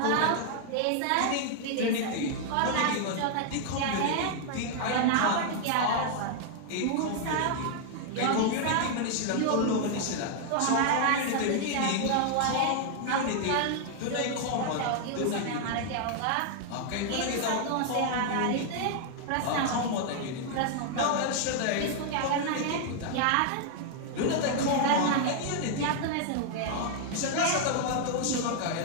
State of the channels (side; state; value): both; different; correlation 0.00